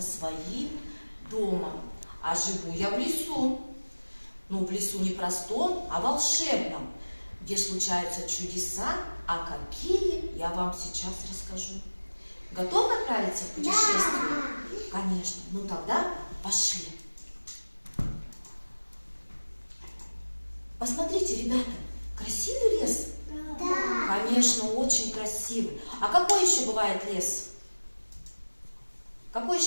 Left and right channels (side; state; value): both; inverted; correlation -1.00